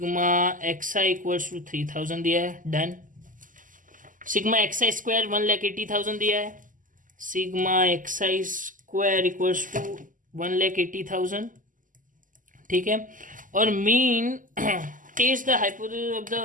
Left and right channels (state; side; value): late; left; 0.38 ms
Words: x i equals to 3000 दिया है, डन। सिग्मा एक्स आई स्क्वायर 1,80,000 दिया है, sigma x I square equals to 1,80,000, ठीक है। और mean test the hypothesis of